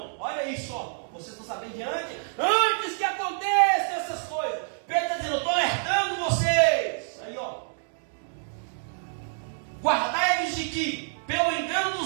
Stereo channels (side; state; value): left; silent; digital silence